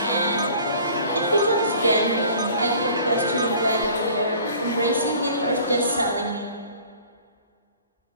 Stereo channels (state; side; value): inverted; both; correlation -0.49